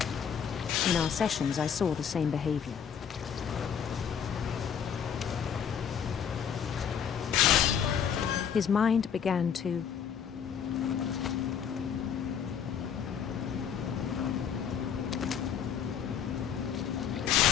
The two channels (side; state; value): right; quieter; 7.9 dB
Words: In our sessions, I saw the same behavior. His mind began to